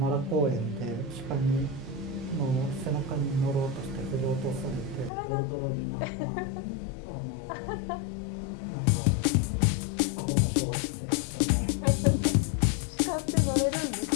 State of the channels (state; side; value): drops out; right; at 5.1 s